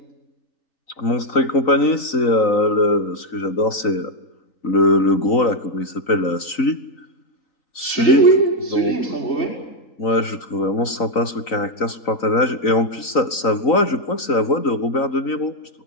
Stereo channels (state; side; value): late; right; 3.9 ms